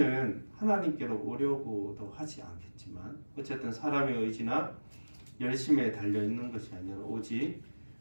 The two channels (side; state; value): both; inverted; correlation -1.00